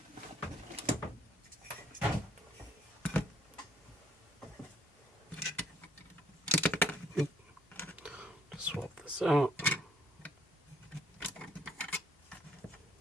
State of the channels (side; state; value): both; normal; correlation 0.65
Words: Swap this out.